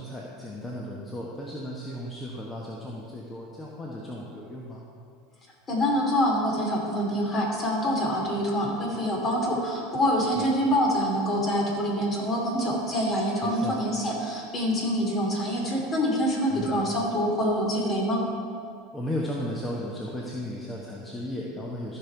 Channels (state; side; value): normal; both; correlation 0.39